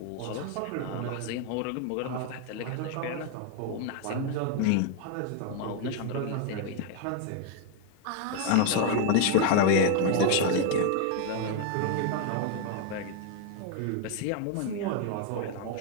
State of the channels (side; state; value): both; different; correlation 0.01